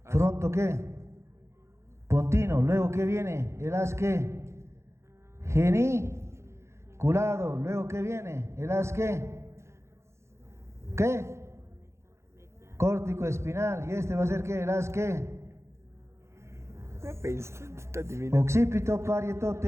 Fronto ¿qué? Pontino. Luego ¿qué viene? El haz ¿qué? Geniculado. Luego ¿qué viene? El haz ¿qué? ¿Qué? Córtico espinal. ¿Y este va a ser qué? El haz ¿qué? Occipito, parieto,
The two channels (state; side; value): late; left; 0.13 ms